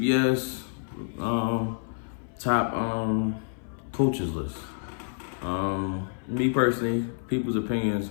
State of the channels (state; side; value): silent; right; 57 dB below the other